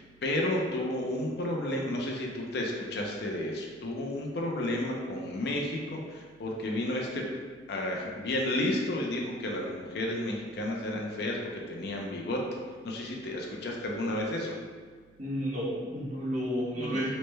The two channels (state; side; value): noise; right; hum, 29 dB below the sound